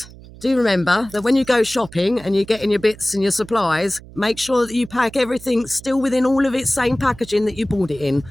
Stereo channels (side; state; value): right; noise; hum, 19 dB below the sound